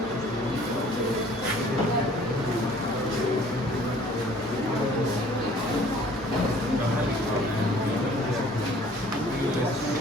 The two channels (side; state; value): both; normal; correlation 0.53